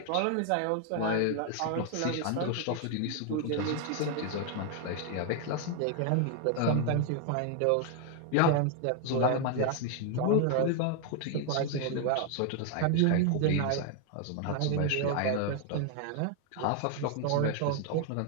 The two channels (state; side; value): different; both; correlation 0.00